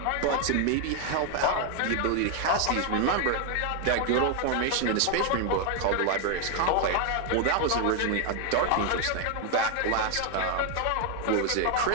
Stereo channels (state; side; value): different; both; correlation 0.01